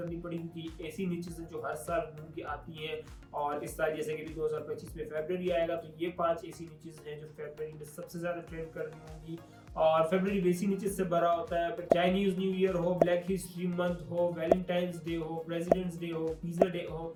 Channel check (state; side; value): identical; both; correlation 1.00